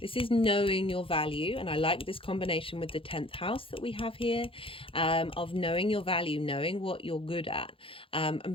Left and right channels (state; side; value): late; right; 0.26 ms